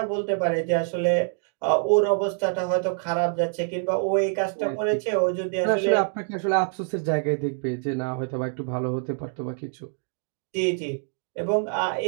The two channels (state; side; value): silent; left; 61 dB below the other